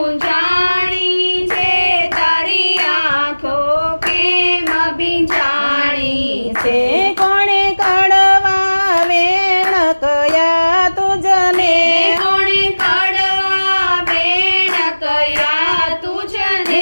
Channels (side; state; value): both; inverted; correlation -1.00